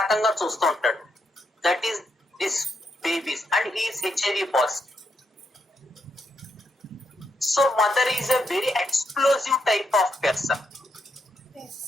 రకంగా చూస్తూ ఉంటాడు. That is this babies, and he is HIV positive. So mother is a very explosive type of person.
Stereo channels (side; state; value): both; normal; correlation 0.80